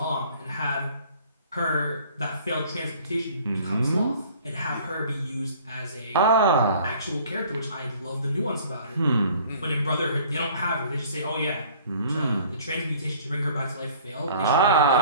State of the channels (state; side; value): inverted; both; correlation -0.52